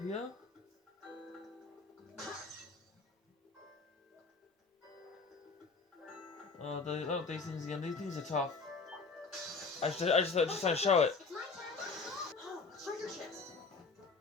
here. These things again. These things are tough. I just trying to show it. It's my turn. Oh, treasure chest.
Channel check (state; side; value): quieter; right; 4.3 dB